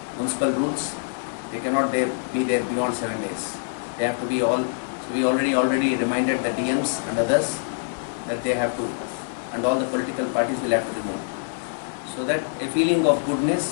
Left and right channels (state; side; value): silent; right; digital silence